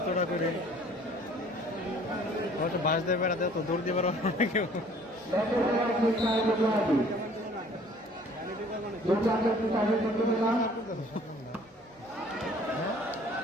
করে হয়তো বাস দিয়ে বেড়াতে তো দৌড় দিয়ে বেড়ানো না কেউ। ব্যাটে খেলার চেষ্টা দুর্দান্ত দুর্দান্ত একটু চাপে করতে পেলাম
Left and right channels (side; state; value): both; normal; correlation 0.54